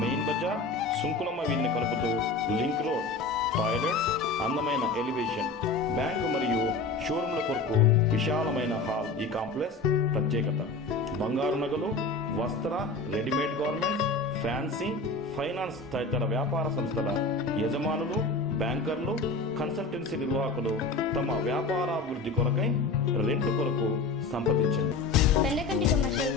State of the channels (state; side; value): quieter; right; 3.7 dB